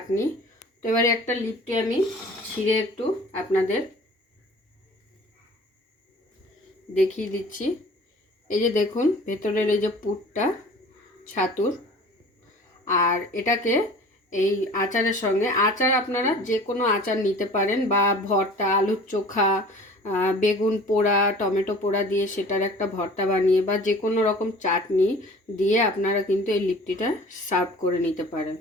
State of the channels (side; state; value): both; normal; correlation 0.45